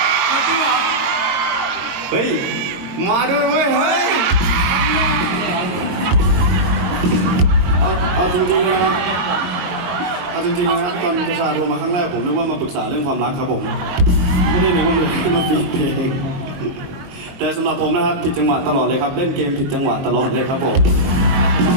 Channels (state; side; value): late; left; 22 ms